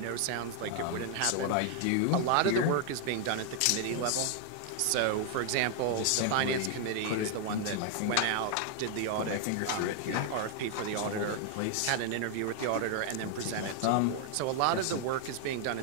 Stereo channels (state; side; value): different; both; correlation 0.00